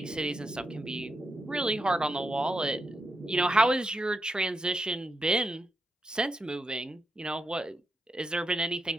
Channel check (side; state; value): both; normal; correlation 0.84